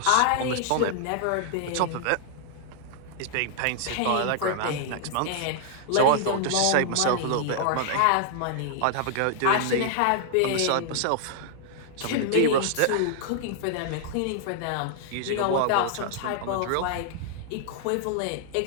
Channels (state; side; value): different; both; correlation -0.01